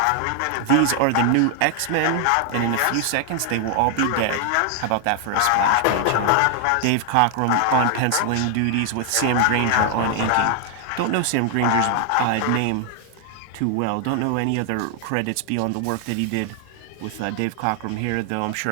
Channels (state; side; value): different; both; correlation 0.00